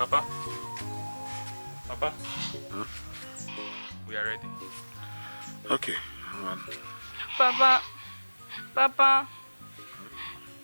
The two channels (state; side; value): inverted; both; correlation -1.00